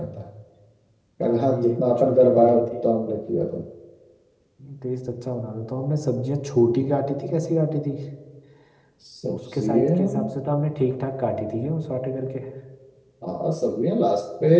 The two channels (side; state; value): both; identical; correlation 1.00